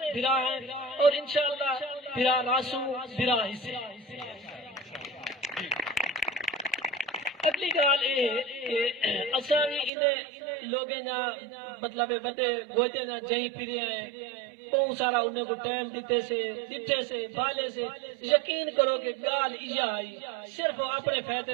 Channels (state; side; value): drops out; left; at 9.9 s